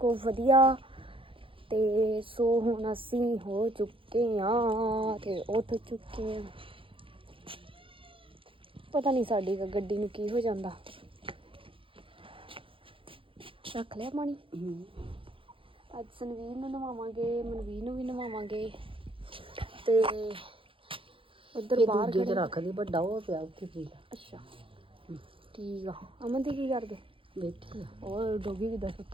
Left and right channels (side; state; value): left; late; 0.25 ms